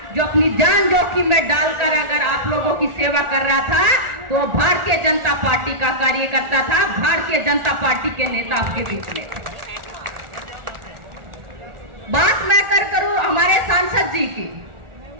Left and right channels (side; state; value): left; late; 1.4 ms